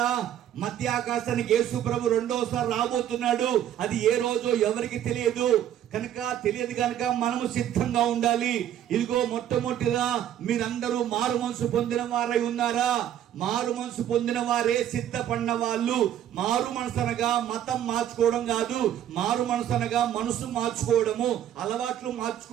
మధ్య ఆకాశానికి యేసు ప్రభు రెండోసారి రాబోతున్నాడు. అది ఏ రోజో ఎవరికి తెలియదు కనుక మనము సిద్ధంగా ఉండాలి. ఇదిగో మొట్టమొదటిగా మీరందరూ మారు మనసు పొందిన వారై ఉన్నారా? మారు మనసు పొందిన వారే సిద్ధపడిన వాళ్ళు. మారు మనసు అనగా మతం మార్చుకోవడం కాదు. మారు మనసు అనగా మనసు మార్చుకోవడము, అలవాట్లు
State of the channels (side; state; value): left; quieter; 10.8 dB